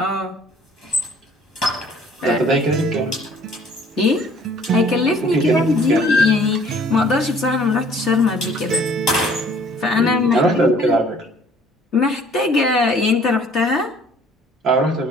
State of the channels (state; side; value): normal; both; correlation 0.56